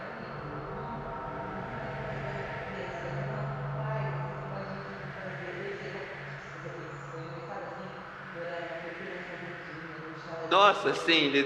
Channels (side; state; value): both; identical; correlation 1.00